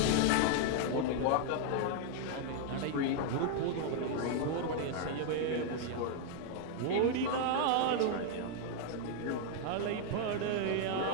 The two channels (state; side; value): different; both; correlation 0.00